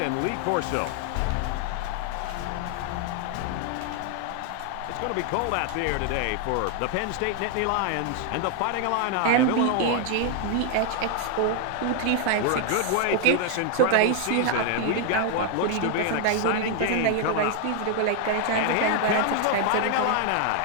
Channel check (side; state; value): both; different; correlation 0.00